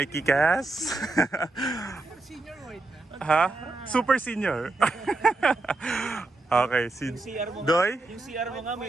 Cass. Senior white na? Ha? Super senior. Okay, si Doy. Yung CR mo nga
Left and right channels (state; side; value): quieter; left; 3.2 dB